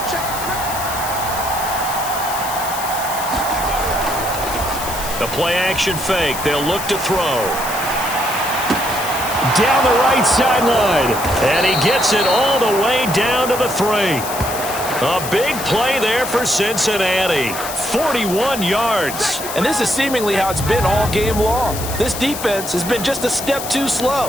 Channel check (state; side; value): noise; left; hiss, 8 dB below the sound